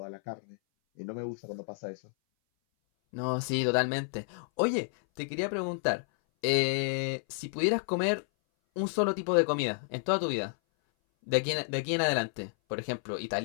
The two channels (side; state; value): right; silent; 57 dB below the other